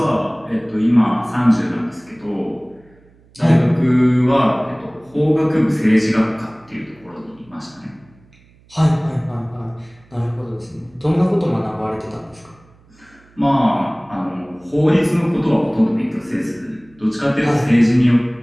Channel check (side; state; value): right; noise; hum, 30 dB below the sound